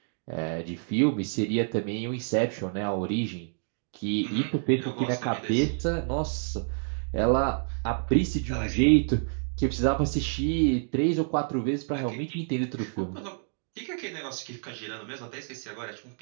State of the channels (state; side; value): silent; left; 59 dB below the other